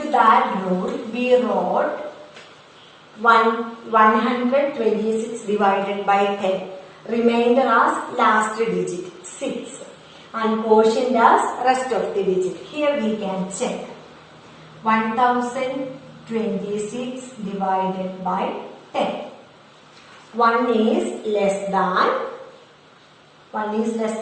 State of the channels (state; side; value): identical; both; correlation 1.00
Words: to that rule, we wrote 126 divided by 10. Remainder as last digit 6 and quotient as rest of the digit. Here we can check. 1026 divided by 10. 1 is less than